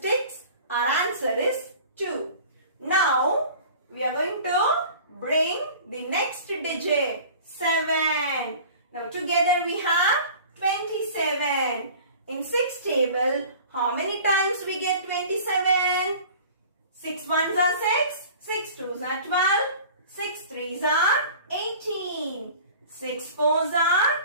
6, our answer is 2. Now, we are going to bring the next digit. 7. Now together we have 27. In 6 table, how many times we get 27? 6 ones are 6, 6 twos are 12, 6 threes are 18, 6 fours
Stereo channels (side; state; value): both; inverted; correlation -0.44